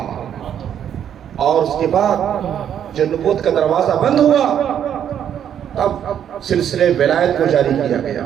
اور اس کے بعد جب نبوت کا دروازہ بند ہوا تب سلسلہ ولایت کو جاری کیا گیا.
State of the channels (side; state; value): left; quieter; 9.4 dB